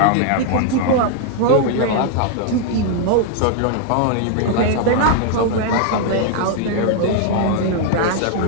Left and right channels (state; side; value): different; both; correlation 0.00